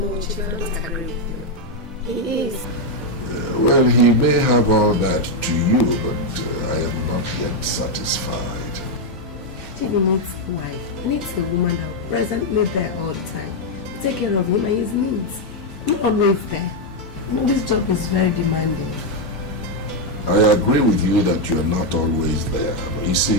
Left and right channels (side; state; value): both; normal; correlation 0.02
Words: Chief, I don't agree with you. He is. Well, he may have all that to you, but I am not yet satisfied. Chief needs a wife. He needs a woman that will presently there all the time. Take care of him and his needs. Not always there. You know, this job is very demanding. I agree with you that you're not always there. You